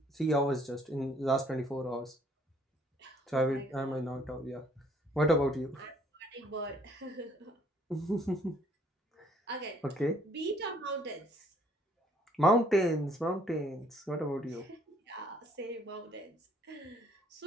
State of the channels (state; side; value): normal; both; correlation 0.62